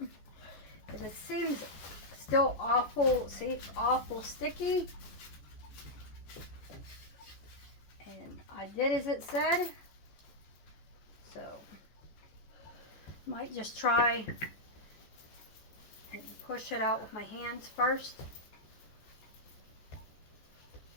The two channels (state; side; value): late; right; 14 ms